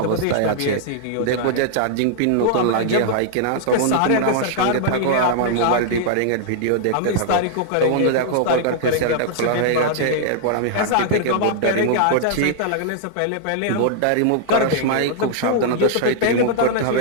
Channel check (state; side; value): different; both; correlation -0.01